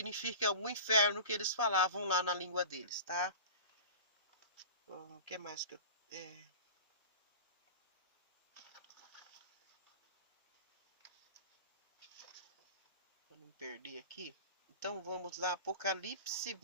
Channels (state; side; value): inverted; both; correlation -0.36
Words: o inferno que eles falavam lá na língua deles, tá? O que mais que eu... Para não perder aqui. Então, vamos lá, Apocalipse